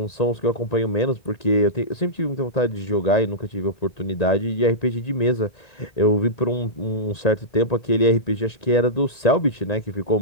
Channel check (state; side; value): late; right; 1.9 ms